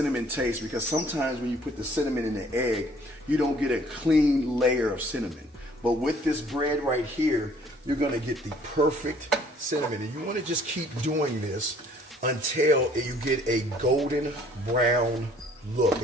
taste, because sometimes when you put the cinnamon in the egg, you don't get a clean layer of cinnamon. But with this bread right here, you're going to get the perfect cinnamon. And you want to just keep doing this until you get a golden brown look,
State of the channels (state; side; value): normal; both; correlation 0.58